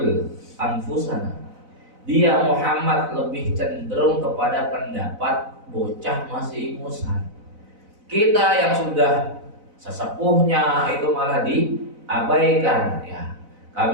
anfusana. Dia Muhammad lebih cenderung kepada pendapat bocah masih ingusan. Kita yang sudah sesepuhnya itu malah diabaikan ya.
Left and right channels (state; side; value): late; left; 4.0 ms